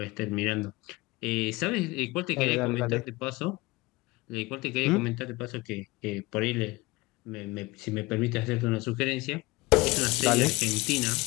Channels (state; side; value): quieter; right; 22.0 dB